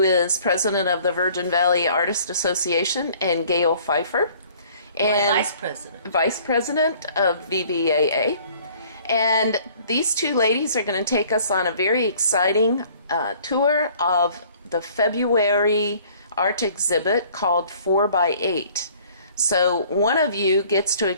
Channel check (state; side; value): inverted; both; correlation -0.55